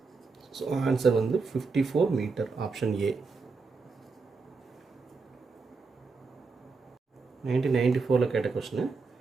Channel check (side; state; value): left; quieter; 4.4 dB